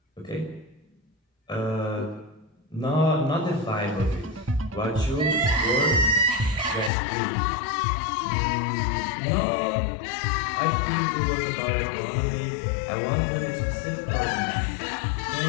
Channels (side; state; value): right; drops out; at 6.9 s